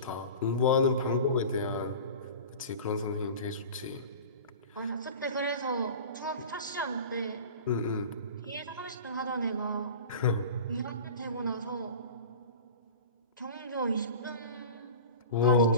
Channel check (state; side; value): inverted; both; correlation -0.36